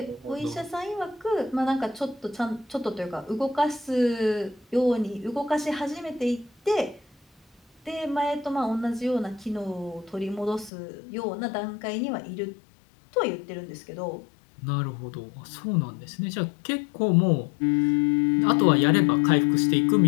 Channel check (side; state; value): right; drops out; at 10.7 s